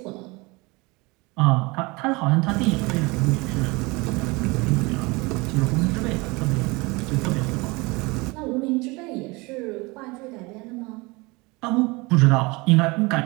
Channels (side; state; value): left; quieter; 25.2 dB